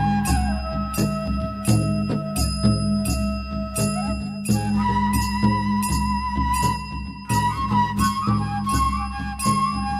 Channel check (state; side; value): identical; both; correlation 1.00